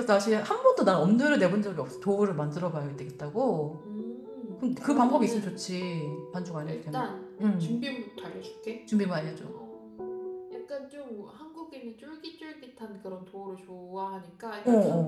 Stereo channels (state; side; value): identical; both; correlation 1.00